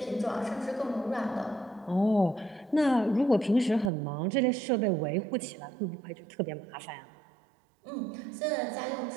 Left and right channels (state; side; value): drops out; left; at 3.9 s